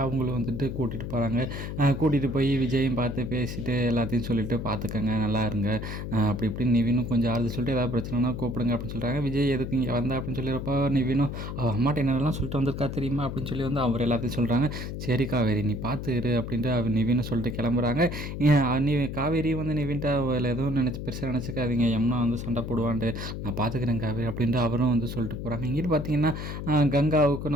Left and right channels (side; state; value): left; noise; hum, 6 dB below the sound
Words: அவங்களும் வந்துட்டு கூட்டிகிட்டு போகிறாங்க. கூட்டிகிட்டு போய் விஜயும் பார்த்து பேசிட்டு எல்லாத்தையும் சொல்லிவிட்டு பார்த்துக்கங்க, நல்லா இருங்க அப்படி இப்படின்னு நிவினும் கொஞ்சம் ஆறுதல் சொல்லிட்டு ஏதாவது பிரச்சனைனா கூப்பிடுங்க அப்படின்னு சொல்கிறாங்க. விஜய் எதுக்கு இங்கே வந்தா அப்படின்னு சொல்லியிருப்போ நிவினும் அம்மாட்ட என்னெல்லாம் சொல்லிட்டு வந்திருக்கா தெரியுமா அப்படின்னு சொல்லி வந்து அவர் எல்லாத்தையும் சொல்கிறாங்க. சரி காவேரி நீ பார்த்து இரு அப்படின்ட்டு அவர் நிவினை சொல்லிட்டு கிளம்புறாங்க. நீ காவேரி வந்து நிவின்ட்ட எதுவும் பெருசாக நினச்சிக்காதீங்க, யமுனா வந்து சண்டை போடுவான்ட்டு, நான் பார்த்துக்கிறேன் காவேரி அப்படின்ட்டு அவரும் வந்து சொல்லிட்டு போகிறாங்க. இங்கிட்டு பார்த்தீங்கன்னா கங்காவுக்கும்